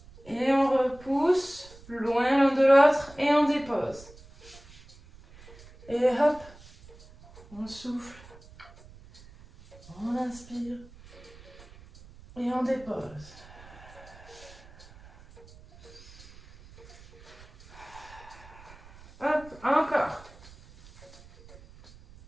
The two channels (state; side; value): noise; right; rumble, 21 dB below the sound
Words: Et on repousse loin l'un de l'autre et on dépose. Et hop, on souffle. On inspire. Et on dépose. Hop, encore.